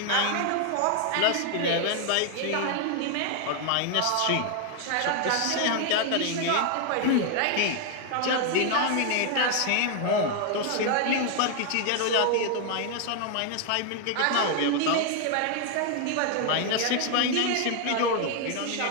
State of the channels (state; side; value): different; both; correlation 0.00